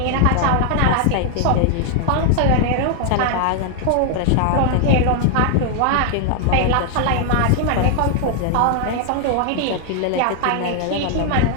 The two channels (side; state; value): both; different; correlation 0.00